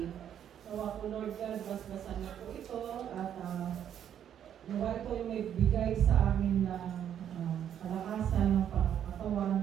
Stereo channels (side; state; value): left; quieter; 9.6 dB